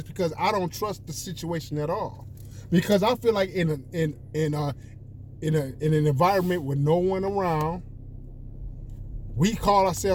because I don't trust the situation at all. Because I feel like in an environment with no one around, we call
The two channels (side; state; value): both; identical; correlation 1.00